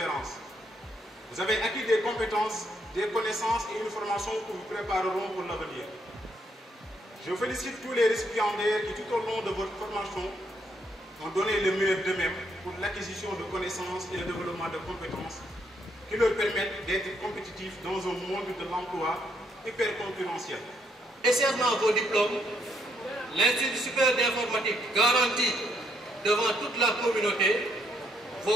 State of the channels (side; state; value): both; normal; correlation 0.73